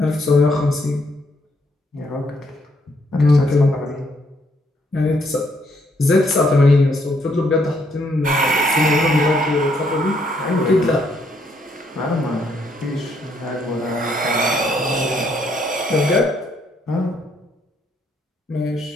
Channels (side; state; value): both; normal; correlation 0.72